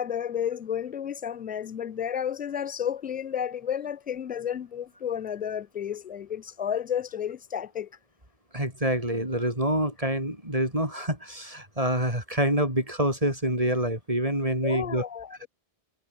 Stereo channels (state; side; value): late; left; 1.7 ms